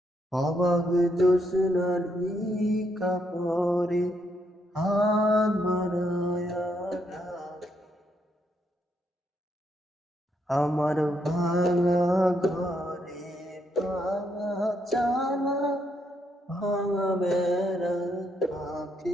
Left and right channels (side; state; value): both; normal; correlation 0.76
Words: অবাক জোছনার কাপড়ে হাত বাড়ায়া ডাকে। আমার ভাঙা ঘরে ভাঙা চালা ভাঙা বেড়ার